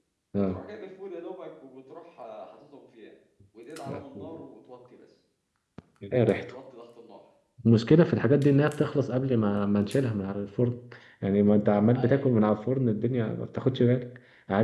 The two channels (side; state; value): both; identical; correlation 1.00